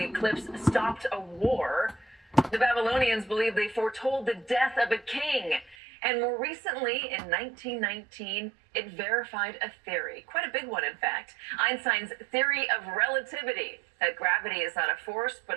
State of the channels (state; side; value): drops out; left; at 5.8 s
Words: eclipse stopped a war. The Babylonians believed they foretold the death of a king. And more recently, in 1919, it verified a theory, quite a big one, in fact, Einstein's theory of relativity, that gravity is not a force,